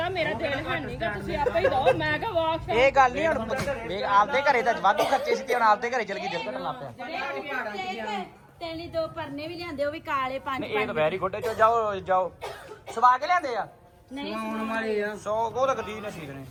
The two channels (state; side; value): identical; both; correlation 1.00